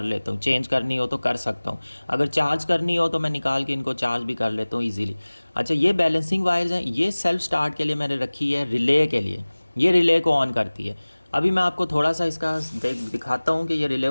लेता हूँ। चेंज करनी हो तो कर सकता हूँ, अगर चार्ज करनी हो तो मैं निकाल के इनको चार्ज भी कर लेता हूँ ईज़िली। अच्छा, ये बैलेंसिंग वायर्स हैं, ये सेल्फ़ स्टार्ट के लिए मैंने रखी है, रिले के लिए। ये रिले को ऑन करती है। अभी मैं आपको थोड़ा सा इसका दिखाता हूँ कि ये रिले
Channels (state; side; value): inverted; both; correlation -1.00